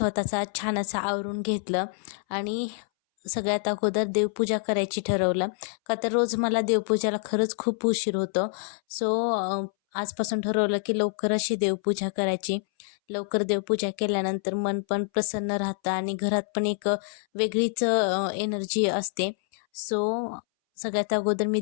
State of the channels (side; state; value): right; silent; 60 dB below the other